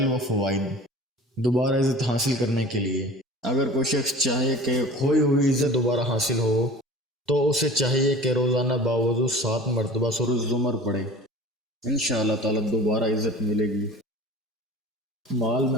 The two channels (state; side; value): normal; both; correlation 0.41